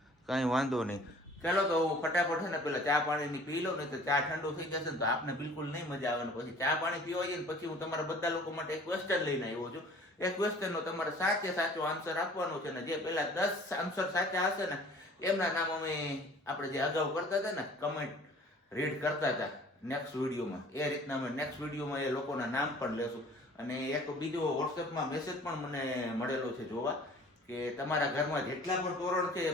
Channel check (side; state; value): both; normal; correlation 0.50